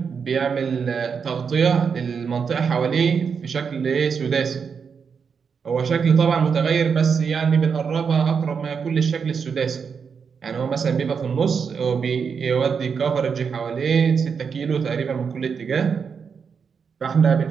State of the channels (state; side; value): quieter; left; 6.2 dB